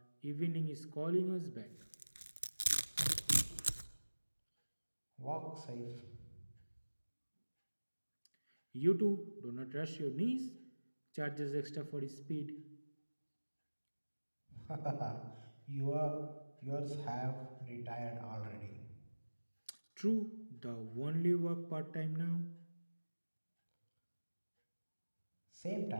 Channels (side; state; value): both; inverted; correlation -1.00